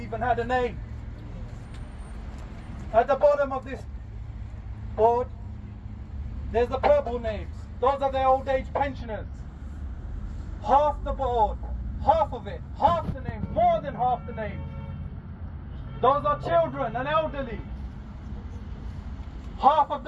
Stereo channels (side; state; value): both; identical; correlation 1.00